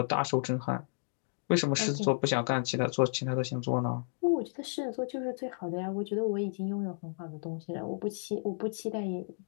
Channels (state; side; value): silent; right; digital silence